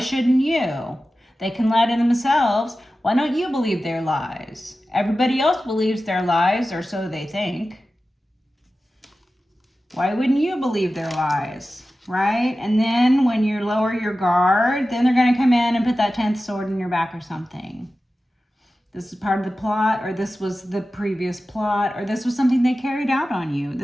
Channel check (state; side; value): normal; both; correlation 0.94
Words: you? They can lie to themselves. Why don't you believe their lies? Everybody else believes their lies, or so they think. Why wouldn't you believe their lies? Right? And then when you lower your guard, then they're going to come in and put that 10th sword in your back or something. This is part of the plot, or this was the previous plot, or this was something they carried out on you.